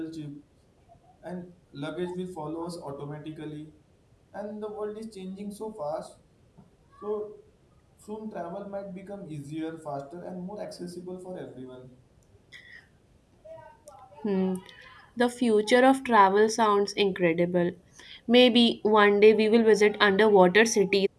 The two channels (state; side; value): identical; both; correlation 1.00